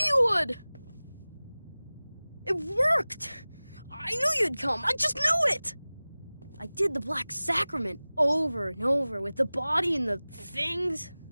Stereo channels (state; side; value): inverted; both; correlation -0.99